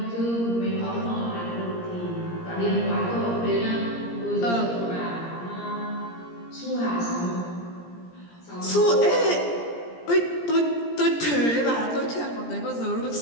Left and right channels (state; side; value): late; right; 17 ms